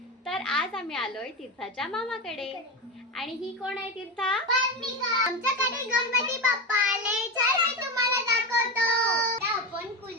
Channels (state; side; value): normal; both; correlation 0.18